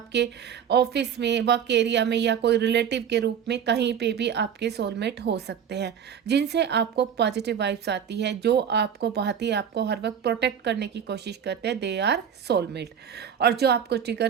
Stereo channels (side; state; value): left; quieter; 8.3 dB